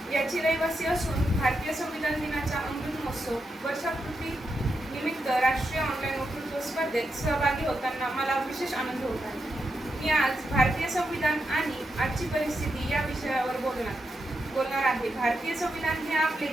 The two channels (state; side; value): normal; both; correlation 0.85